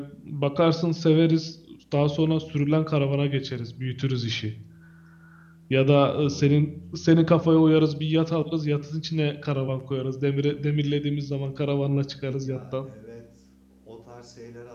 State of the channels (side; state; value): both; identical; correlation 1.00